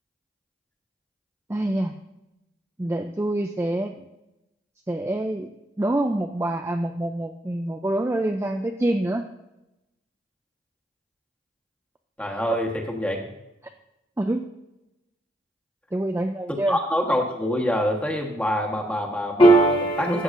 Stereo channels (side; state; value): both; normal; correlation 0.75